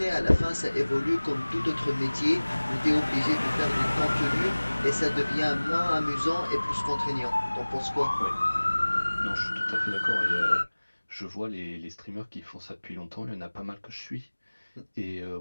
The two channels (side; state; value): both; inverted; correlation -1.00